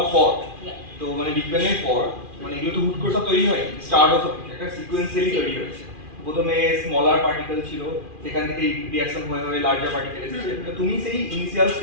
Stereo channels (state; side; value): late; left; 2.4 ms